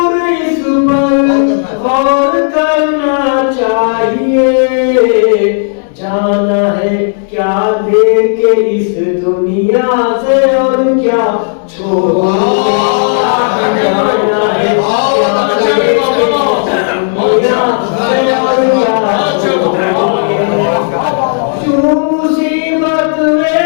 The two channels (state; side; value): silent; right; digital silence